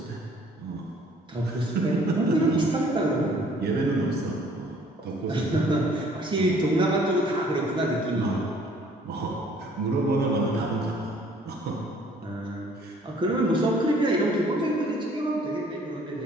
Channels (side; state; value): both; normal; correlation 0.58